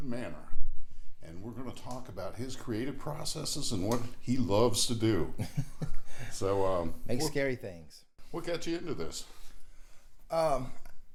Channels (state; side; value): identical; both; correlation 1.00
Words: Manor, and we're going to talk about his creative processes and what he loves to do. So, Make scary things. What got you into this? Well,